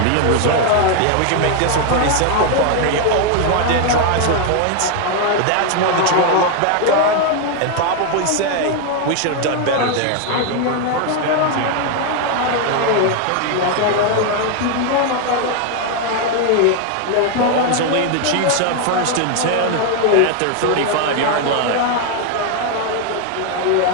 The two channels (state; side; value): different; both; correlation 0.01